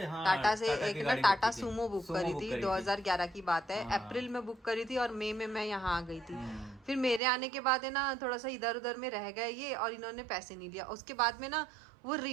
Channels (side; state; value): left; drops out; at 7.2 s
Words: हाँ टाटा से टाटा एक की ना गाड़ी टाटा बुक की थी। सूमो बुक सूमो करी बुक थी, करी थी। 2011 की बात है। हाँ। अप्रैल में बुक करी थी और मई में मैं यहाँ आ गई थी। फिर मेरे आने के बाद है ना थोड़ा सा इधर उधर में रह गए ये, और इन्होंने पैसे नहीं लिया। उसके बाद में ना वो